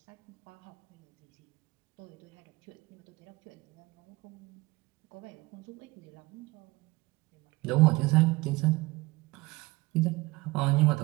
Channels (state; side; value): quieter; left; 21.9 dB